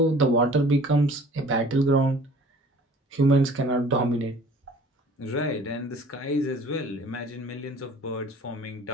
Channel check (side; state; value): both; normal; correlation 0.49